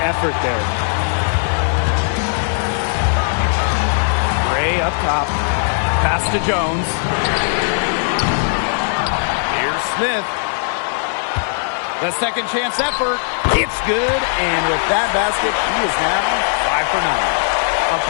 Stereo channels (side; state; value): right; silent; digital silence